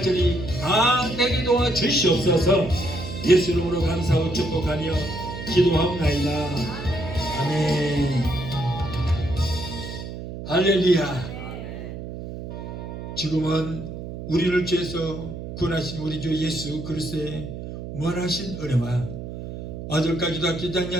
다 되게 도와 주시옵소서. 예수 이름으로 감사하고 축복하며 기도하옵나이다. 아멘. 할렐루야. 지금은 우리를 죄에서 구원하신 우리 주 예수 그리스도의 무한하신 은혜와 아들까지도 아끼지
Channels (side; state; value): right; noise; hum, 9 dB below the sound